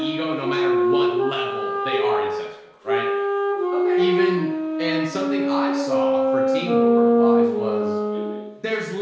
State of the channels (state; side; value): identical; both; correlation 1.00